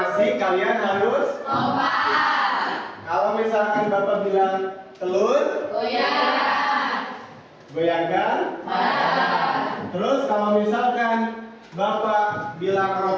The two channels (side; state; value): both; identical; correlation 1.00